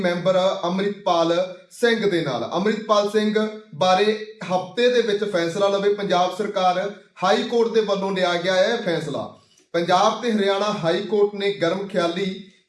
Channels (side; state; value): both; identical; correlation 1.00